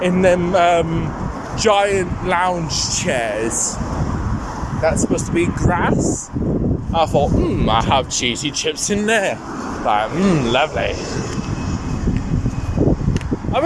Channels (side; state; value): both; identical; correlation 1.00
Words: in them giant lounge chairs. That's supposed to be grass. I thought, I have cheesy chips in there. Like, lovely. I've